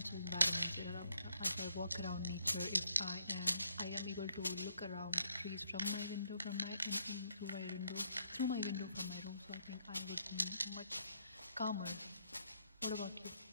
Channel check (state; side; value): inverted; both; correlation -0.72